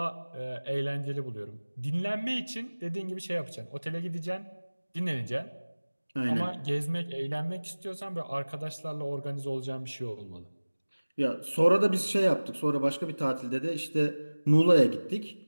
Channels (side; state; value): both; inverted; correlation -1.00